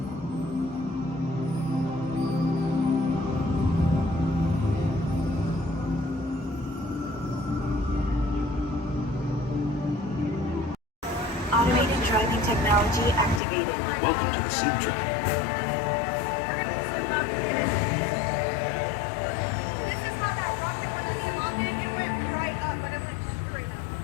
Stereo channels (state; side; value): drops out; right; at 13.4 s